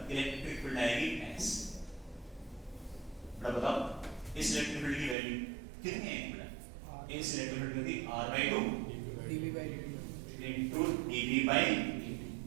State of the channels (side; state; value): left; drops out; at 5.2 s